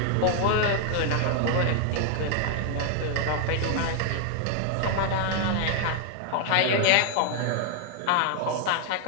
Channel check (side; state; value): both; different; correlation 0.00